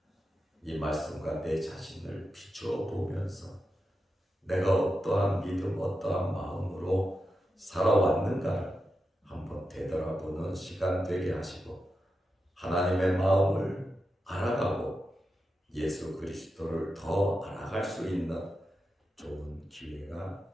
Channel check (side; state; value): both; normal; correlation 0.89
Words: 이 말씀과 내 자신을 비추어 보면서 내가 어떠한 믿음, 어떠한 마음으로 살아왔는가를 한번 되돌아보는 시간 되게 하시고 하나님의 마음을 알아가고 예수 그리스도를 더 알아갈 수 있는 좋은 기회가